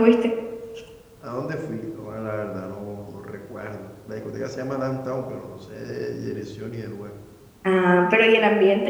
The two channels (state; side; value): identical; both; correlation 1.00